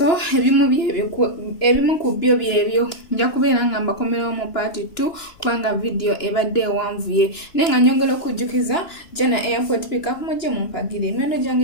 ebimu ku byo byebyo nja kubeera nga mbakomerawo mu part 2 kubanga video ebadde ewanvuye naye nga nyongera okujjukiza Jana Airport Pickup mujje mumpagire emiwendo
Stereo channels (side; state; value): right; late; 2.9 ms